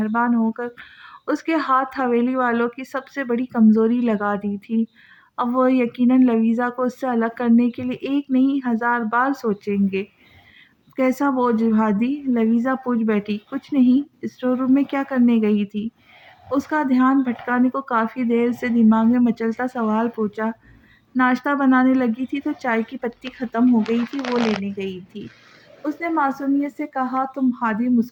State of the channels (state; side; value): identical; both; correlation 1.00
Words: ہو کر اس کے ہاتھ حویلی والوں کی سب سے بڑی کمزوری لگا دی تھی۔ اب وہ یقیناً لویزا کو اس سے الگ کرنے کے لیے ایک نہیں 1000 بار سوچیں گے۔ کیسا بوجھ ہادی؟ لویزا پوچھ بیٹھی۔ کچھ نہیں، اسٹور روم میں کیا کرنے گئی تھی؟ اس کا دھیان بھٹکانے کو کافی دیر سے دماغ میں مچلتا سوال پوچھا۔ ناشتہ بنانے لگی تھی تو چائے کی پتی ختم ہو گئی تھی، وہ لینے گئی تھی، اس نے معصومیت سے کہا۔ تم ہادی